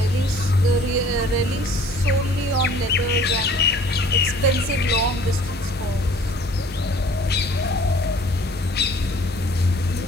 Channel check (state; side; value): normal; both; correlation 0.53